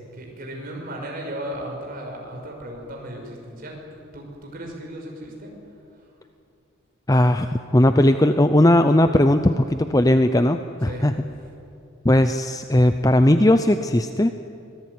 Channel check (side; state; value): both; normal; correlation 0.85